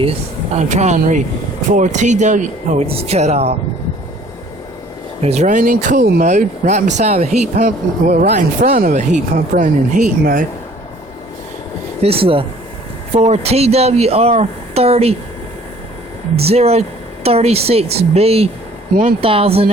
I'm trying to read. 4 TW. Oh, it just cut off. It's running in cool mode right beside a heat pump. Well, right in front of a heat pump running in heat mode. This is a 4 TWR 30 036B 1000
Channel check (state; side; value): normal; both; correlation 0.54